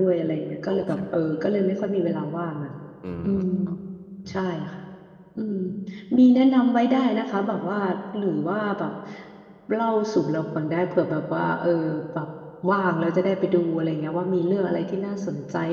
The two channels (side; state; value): both; identical; correlation 1.00